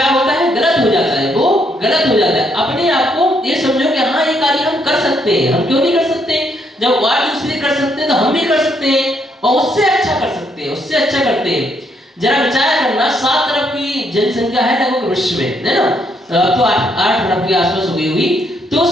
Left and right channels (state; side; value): normal; both; correlation 0.73